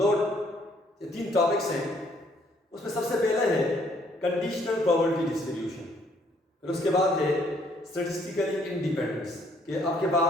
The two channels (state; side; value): normal; both; correlation 0.66